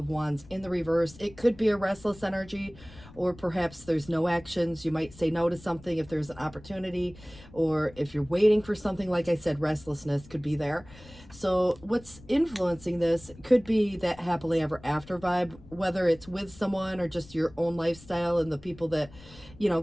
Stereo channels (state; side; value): noise; left; rumble, 21 dB below the sound